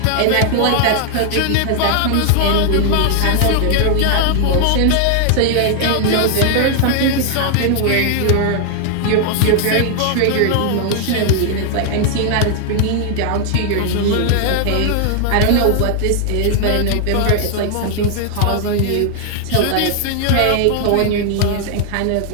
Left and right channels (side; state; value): both; different; correlation 0.00